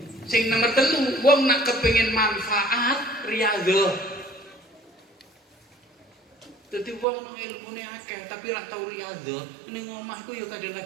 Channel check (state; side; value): drops out; left; at 7.1 s